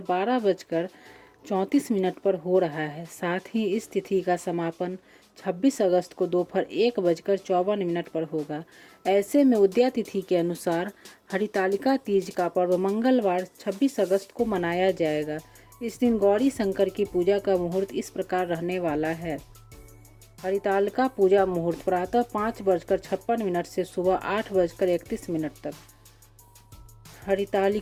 12:34 पर हो रहा है। साथ ही इस तिथि का समापन 26 अगस्त को दोपहर 1:54 पर होगा। ऐसे में उदया तिथि के अनुसार हरितालिका तीज का पर्व मंगलवार 26 अगस्त को मनाया जाएगा। इस दिन गौरी शंकर की पूजा का मुहूर्त इस प्रकार रहने वाला है। हरितालिका पूजा मुहूर्त प्रातः 5:56 से सुबह 8:31 तक।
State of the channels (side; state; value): both; identical; correlation 1.00